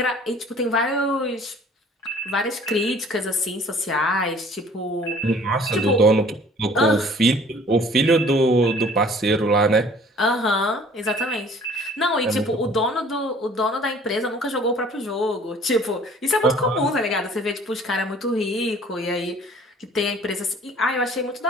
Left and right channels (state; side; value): normal; both; correlation 0.52